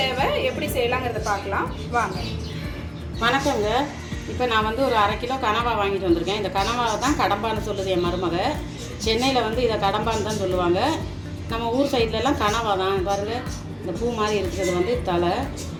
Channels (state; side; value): identical; both; correlation 1.00